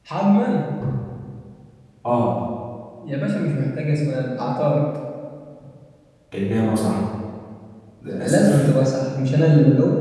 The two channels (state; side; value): identical; both; correlation 1.00